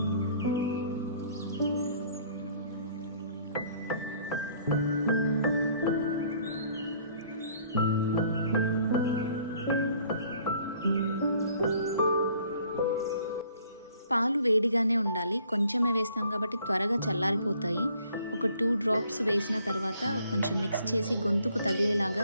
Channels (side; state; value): both; inverted; correlation -0.60